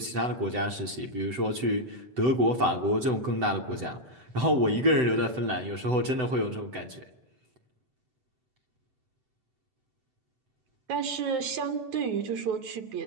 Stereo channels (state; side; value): late; left; 7.9 ms